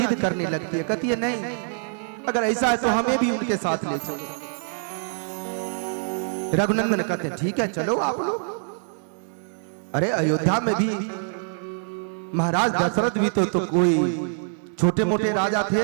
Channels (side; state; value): left; silent; digital silence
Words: करने लगती है, कहती है नहीं, अगर ऐसा है तो हमें भी उनके साथ ले चलो। रघुनंदन कहते हैं ठीक है चलो आप लोग। अरे अयोध्या में भी महाराज दशरथ भी तो कोई छोटे मोटे राजा थे